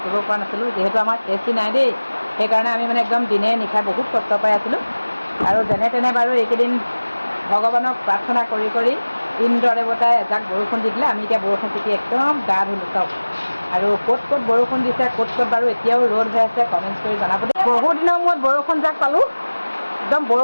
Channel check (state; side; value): inverted; both; correlation -1.00